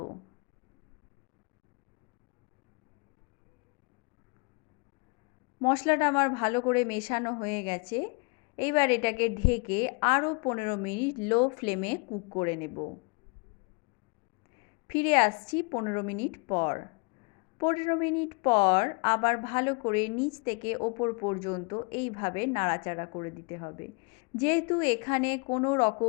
মশলাটা আমার ভালো করে মেশানো হয়ে গেছে। এইবার এটাকে ঢেকে আরও 15 মিনিট লো ফ্লেমে কুক করে নেব। ফিরে আসছি 15 মিনিট পর। 15 মিনিট পর আবার ভালো করে নিচ থেকে ওপর পর্যন্ত এইভাবে নাড়াচাড়া করে দিতে হবে। যেহেতু এখানে কোনো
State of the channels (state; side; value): quieter; right; 32.5 dB